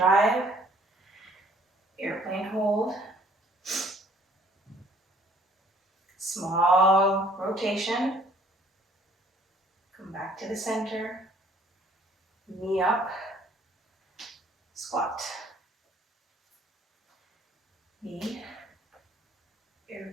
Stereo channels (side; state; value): both; normal; correlation 0.59